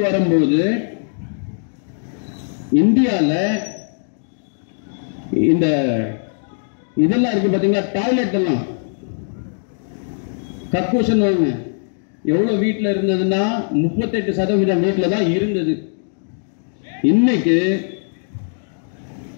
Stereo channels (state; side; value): silent; right; digital silence